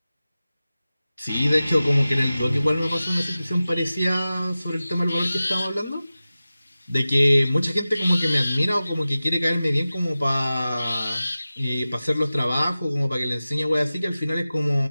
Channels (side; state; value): both; inverted; correlation -0.95